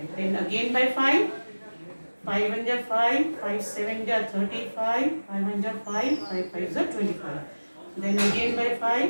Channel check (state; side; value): inverted; both; correlation -1.00